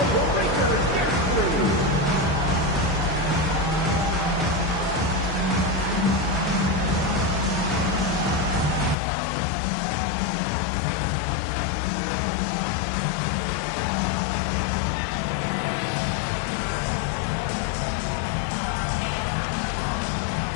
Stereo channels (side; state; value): right; drops out; at 9.0 s